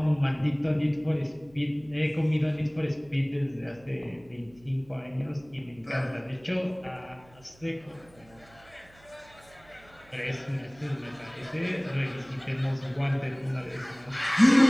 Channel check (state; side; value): noise; right; hum, 27 dB below the sound